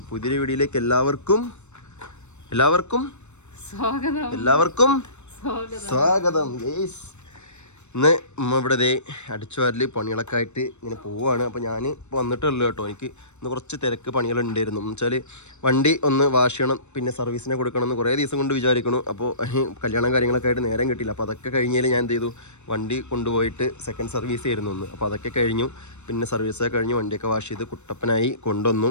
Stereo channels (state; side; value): late; right; 0.82 ms